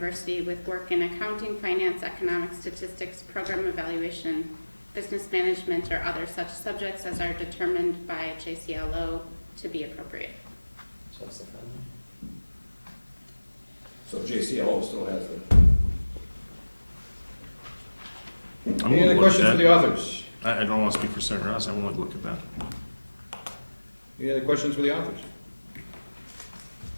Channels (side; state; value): both; inverted; correlation -1.00